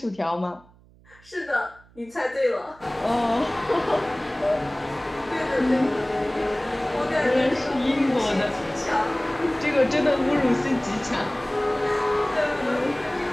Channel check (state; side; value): noise; right; hum, 27 dB below the sound